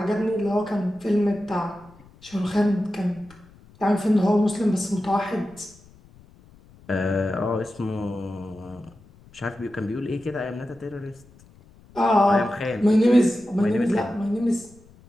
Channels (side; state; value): left; noise; rumble, 26 dB below the sound